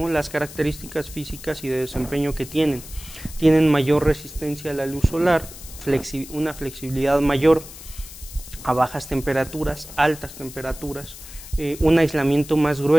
Las características físicas y de desempeño que tienen mayor resistencia a la luz solar, una flexibilidad mayor a bajas temperaturas, altas temperaturas, un aislamiento más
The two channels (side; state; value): left; noise; hiss, 16 dB below the sound